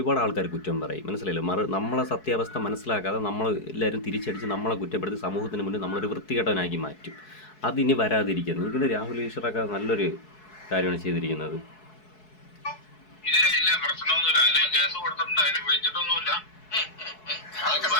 ആൾക്കാർ കുറ്റം പറയും. മനസ്സിലായില്ലോ? നമ്മളെ സത്യാവസ്ഥ മനസ്സിലാക്കാതെ എല്ലാവരും തിരിച്ചടിച്ച് നമ്മളെ കുറ്റപ്പെടുത്തി സമൂഹത്തിന് മുന്നിൽ നമ്മളൊരു വൃത്തികെട്ടവനാക്കി മാറ്റും. അതിനി വരാതിരിക്കുന്നു. എനിക്കൊരു രാഹുൽ ഈശ്വറൊക്കെ നല്ലൊരു കാര്യമാണ് ചെയ്തിരിക്കുന്നത്. ഇല്ല പ്രശ്നമൊന്നുമില്ല. ഞാൻ കേസ് കൊടുത്തിട്ടുണ്ട്, അതിന് വിളിച്ചിട്ടൊന്നുമില്ല.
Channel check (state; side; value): late; right; 4.7 ms